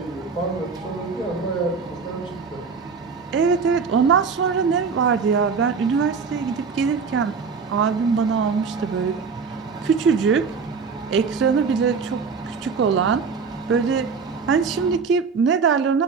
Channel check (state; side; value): quieter; left; 5.4 dB